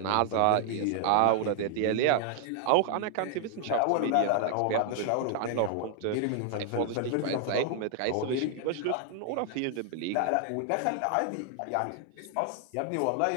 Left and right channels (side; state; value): both; different; correlation 0.00